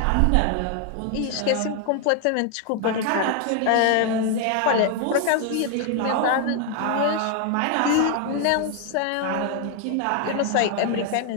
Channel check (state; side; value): different; both; correlation 0.00